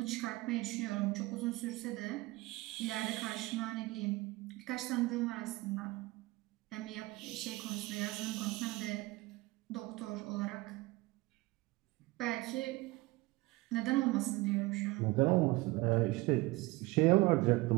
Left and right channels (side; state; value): left; quieter; 21.2 dB